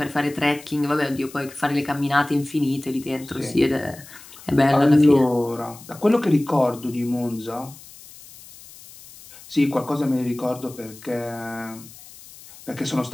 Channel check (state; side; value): noise; left; hiss, 19 dB below the sound